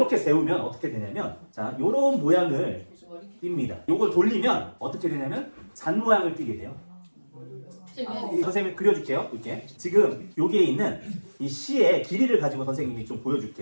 세우면 어떻게 되냐면, 자, 요런 모양을 띱니다. 요걸 돌리면 어떻게 되냐면, 잔 모양을 띠게 돼요. 선생님이 그려줄게요. 이렇게 지금 여기에 있는 이 시의 길이를 가지고 선생님이 좀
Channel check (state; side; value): inverted; both; correlation -1.00